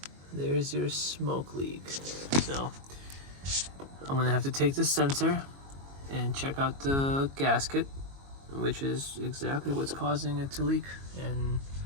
There's your smoke leak. So I'm gonna have to take the sensor and check out the gasket, which is exactly what's causing it to leak, and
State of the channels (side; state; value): left; late; 22 ms